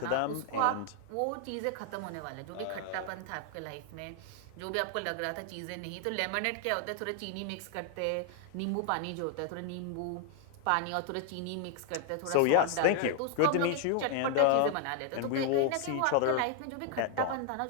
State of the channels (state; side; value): different; both; correlation 0.00